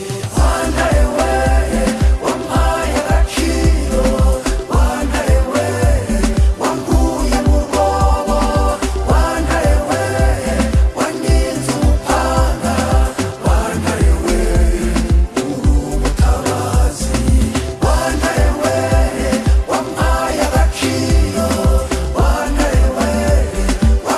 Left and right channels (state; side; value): identical; both; correlation 1.00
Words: Wantare we wampaye agaciro, wantare we wankuye mu rwobo, wantare we waninze umupanga, wantare we uri umutabazi. Wantare we wampaye agaciro, wantare we